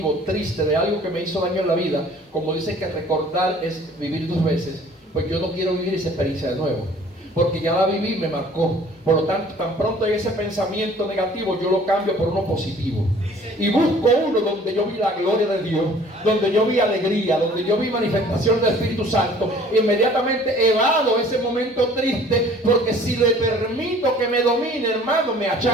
triste, de algo que me hizo daño en la vida, como dicen que recordar es vivir 2 veces, pues yo no quiero vivir esa experiencia de nuevo, porque ya la viví y me marcó. Por lo tanto, tan pronto hay ese pensamiento negativo, yo lo cambio por uno positivo. Y busco uno donde yo vi la gloria de Dios, donde yo vi alegría, donde yo vi manifestación del Espíritu Santo. Inmediatamente evado ese momento triste, porque si le permito que me domine, hermano, me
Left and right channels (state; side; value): normal; both; correlation 0.52